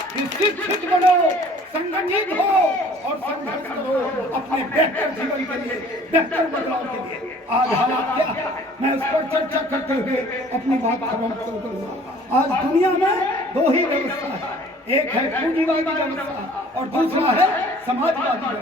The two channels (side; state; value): both; normal; correlation 0.52